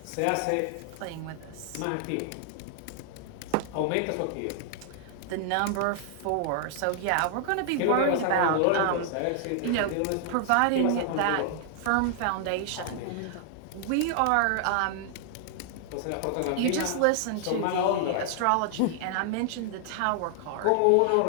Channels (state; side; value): different; both; correlation 0.00